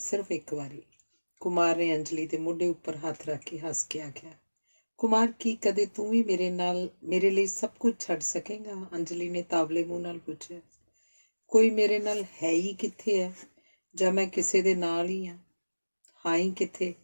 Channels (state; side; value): inverted; both; correlation -1.00